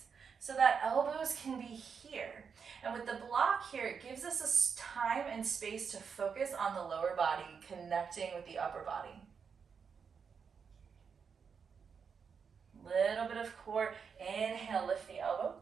so that elbows can be here. And with the block here, it gives us a time and space to focus on the lower body, connecting with the upper body. Little bit of core. Inhale, lift the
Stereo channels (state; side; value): quieter; left; 6.2 dB